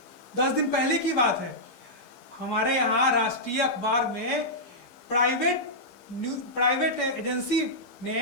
10 दिन पहले की बात है, हमारे यहाँ राष्ट्रीय अखबार में प्राइवेट एजेंसी ने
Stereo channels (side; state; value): right; late; 15 ms